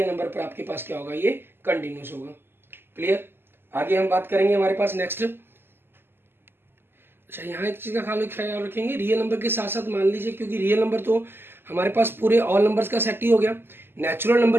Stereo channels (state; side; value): late; left; 0.11 ms